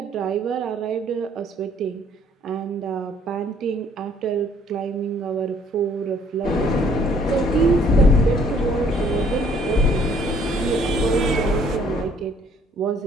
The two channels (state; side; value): normal; both; correlation 0.61